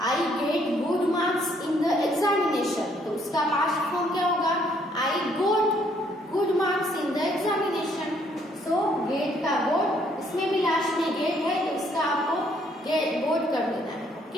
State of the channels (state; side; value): normal; both; correlation 0.67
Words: I get good marks in the examination, तो उसका पास्ट फॉर्म क्या होगा, I got good marks in the examination. So get का गोट, इसमें भी लास्ट में गेट है तो इसका आपको गेट गोट कर देना है।